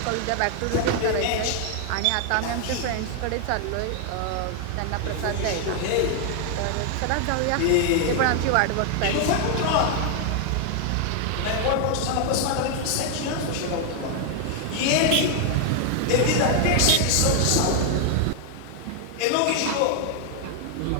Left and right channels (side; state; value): both; different; correlation 0.00